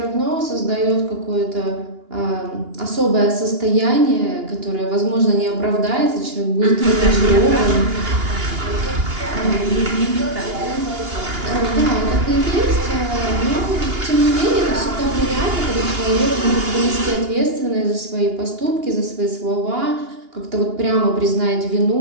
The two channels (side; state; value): left; late; 2.8 ms